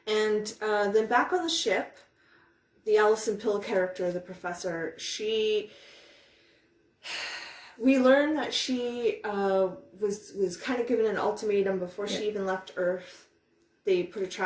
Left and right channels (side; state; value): both; identical; correlation 1.00